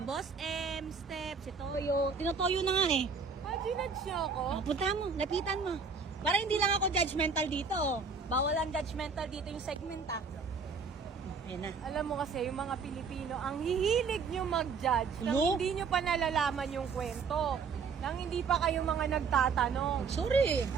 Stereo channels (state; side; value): quieter; left; 5.2 dB